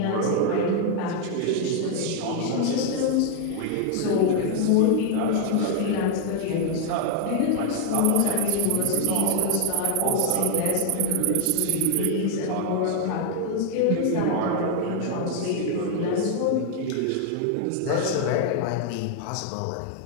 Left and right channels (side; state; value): both; different; correlation 0.00